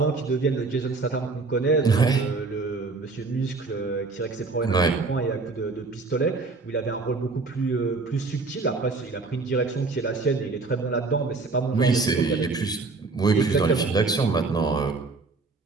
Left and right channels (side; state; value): left; quieter; 3.9 dB